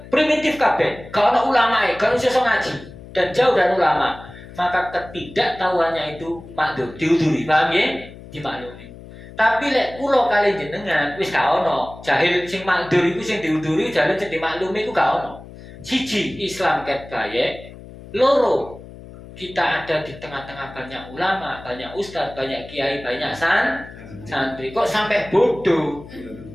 primitif kabeh, gak ana ulamae, gak iso ngaji dan jauh dari ulama. Maka ketidaktahuannya itu makdur, diuduri, paham ya? Dimaklumi. Tapi lek kula kali jenengan wis gak ono, jahil sing makdur iku sing diuduri, jahil sing dimaklumi iku gak ono. Siji, Islam ket bayek. Loro, kita ada di tengah-tengah banyak ulama, banyak ustadz, banyak kiai, banyak santri. Kok sampai bodoh?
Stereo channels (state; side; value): noise; left; hum, 17 dB below the sound